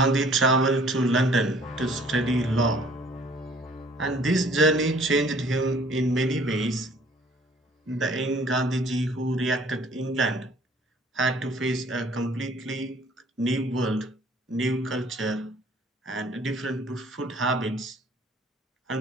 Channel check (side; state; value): both; normal; correlation 0.55